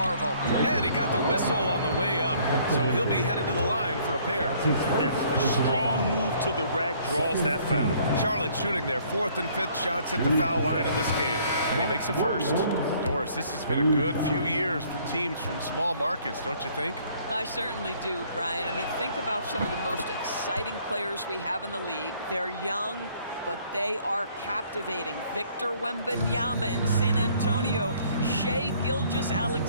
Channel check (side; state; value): both; inverted; correlation -0.60